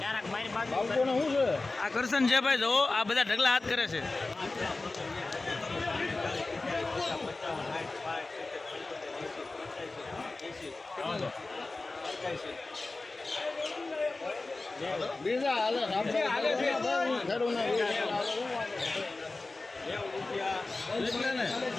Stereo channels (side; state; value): right; quieter; 3.3 dB